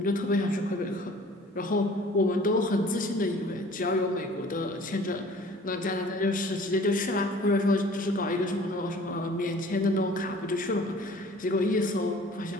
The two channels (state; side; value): normal; both; correlation 0.49